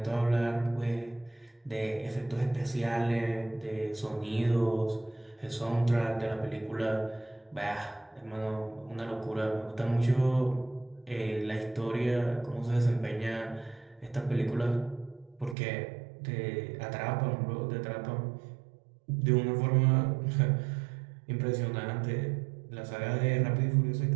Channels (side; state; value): left; drops out; at 15.6 s